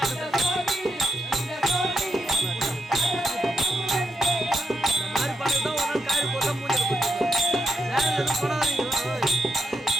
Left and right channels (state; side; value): normal; both; correlation 0.81